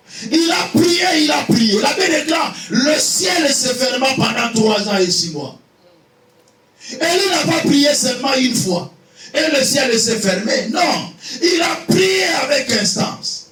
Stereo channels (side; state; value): both; identical; correlation 1.00